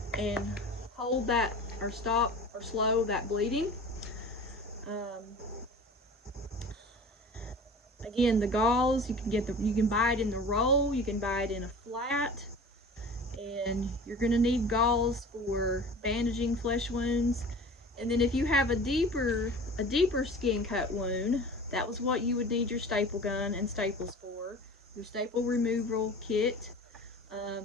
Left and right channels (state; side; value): normal; both; correlation 0.39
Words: and hold that or stop or slow that bleeding. Again, the gauze, you can buy it in the roll, you can buy it in a flat, and you're going to need gauze for bandaging flesh wounds. And then if you have a deeper skin cut wound, that was what you would need your staple gun and staples for. Your staple removal kit,